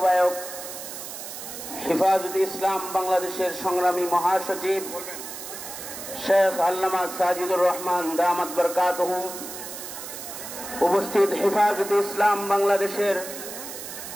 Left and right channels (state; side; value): noise; right; hiss, 10 dB below the sound